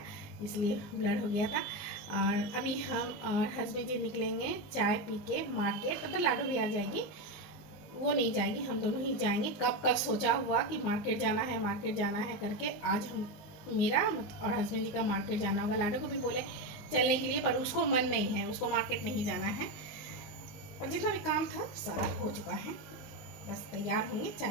इसलिए ब्लर हो गया था। और अभी हम और हस्बैंड जी निकलेंगे चाय पी के मार्केट। तब तो लाडू भी आ जाएगी, वो नहीं जाएगी, हम दोनों ही जाएंगे। कब का सोचा हुआ कि मार्केट जाना है करके, आज हम मेरा और हस्बैंड जी का मार्केट जाना होगा। लाडू को भी बोले चलने के लिए, पर उसको मन नहीं है, उसको मार्केट नहीं जाना है। और जितना भी काम था सारा हो चुका है, बस तैयार होंगे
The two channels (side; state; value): right; late; 19 ms